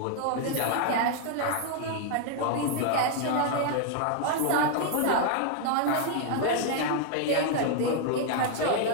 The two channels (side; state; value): both; different; correlation 0.00